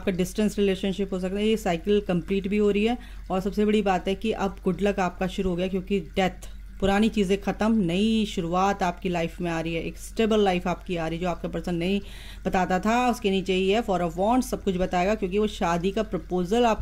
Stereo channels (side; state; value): both; identical; correlation 1.00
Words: डिस्टेंस रिलेशनशिप हो सकता है, ये साइकिल कंप्लीट भी हो रही है। और सबसे बड़ी बात है कि अब गुड लक आपका शुरू हो गया, क्योंकि डेथ, पुरानी चीज़ें ख़त्म, नई शुरुआत आपकी लाइफ में आ रही है, एक स्टेबल लाइफ आपकी आ रही है। जो आपका पर्सन नहीं बताता था, उसके नीचे ही है 4 ऑफ वॉन्ड्स, सब कुछ बताएगा, क्योंकि वो शादी का प्रपोजल